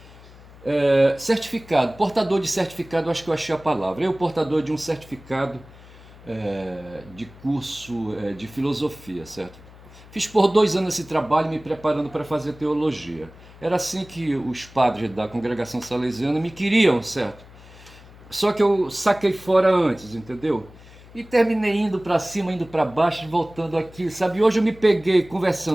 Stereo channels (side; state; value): left; noise; hum, 21 dB below the sound